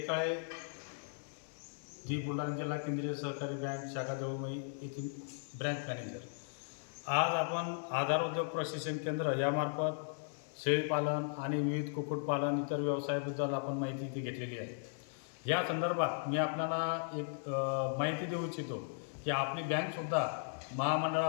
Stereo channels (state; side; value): silent; right; 53 dB below the other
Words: जी बुलढाणा जिल्हा केंद्रीय सहकारी बँक शाखा जवळमई येथील ब्रँच मॅनेजर. आज आपण आधार उद्योग प्रशिक्षण केंद्र यामार्फत शेळीपालन आणि विविध कुक्कुटपालन इतर व्यवसायाबद्दल आपण माहिती इथे घेतलेली आहे. या संदर्भात मी आपल्याला एक माहिती देऊ इच्छितो की आपली बँकसुद्धा